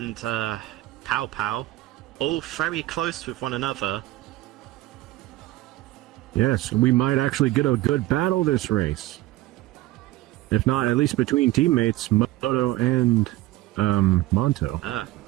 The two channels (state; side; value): quieter; left; 17.1 dB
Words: Pow Pow, all very close with one another. Yes, we might actually get a good battle this race. If not, at least between teammates, Moto and Monto.